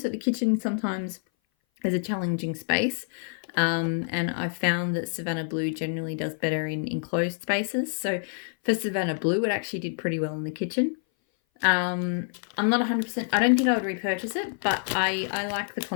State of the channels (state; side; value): silent; right; 58 dB below the other